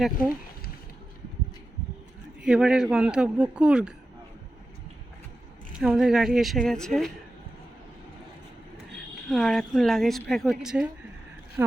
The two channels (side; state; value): both; normal; correlation 0.92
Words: দেখো, এবারের গন্তব্য কুর্গ। আমাদের গাড়ি এসে গেছে আর এখন লাগেজ প্যাক হচ্ছে।